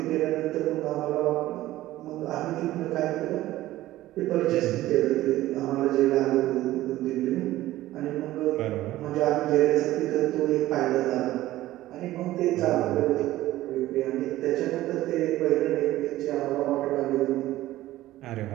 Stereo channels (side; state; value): left; quieter; 15.6 dB